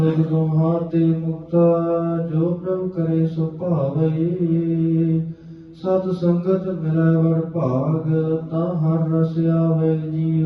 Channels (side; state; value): both; identical; correlation 1.00